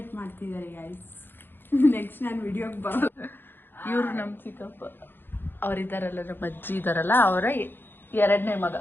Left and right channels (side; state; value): right; late; 0.10 ms